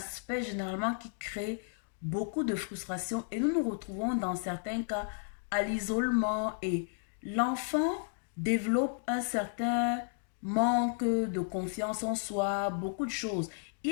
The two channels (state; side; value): silent; right; digital silence